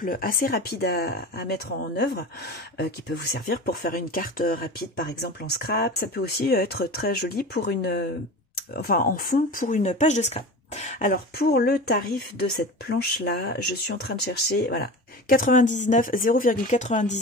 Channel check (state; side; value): normal; both; correlation 0.32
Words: assez rapide à mettre en œuvre, qui peut vous servir pour faire une carte rapide par exemple en scrap. Ça peut aussi être très joli pour en fond pour une page de scrap. Alors pour le tarif de cette planche là, je suis en train de chercher, voilà,